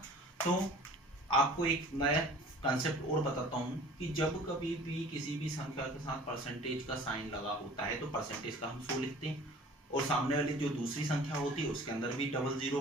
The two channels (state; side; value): normal; both; correlation 0.47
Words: तो आपको एक नया कंसेप्ट और बताता हूं कि जब कभी भी किसी भी संख्या के साथ परसेंटेज का साइन लगा होता है तो परसेंटेज का हम 100 लिखते हैं, और सामने वाली जो दूसरी संख्या होती है उसके अंदर भी डबल जीरो